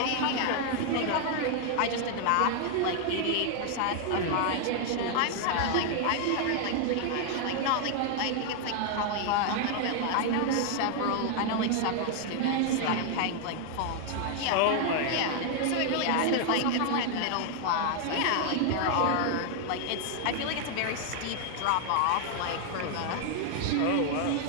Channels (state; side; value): different; both; correlation 0.00